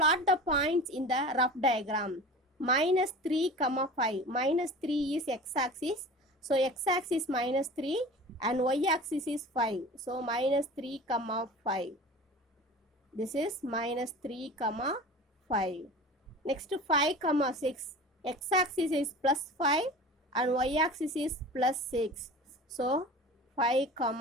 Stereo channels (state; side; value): normal; both; correlation 0.37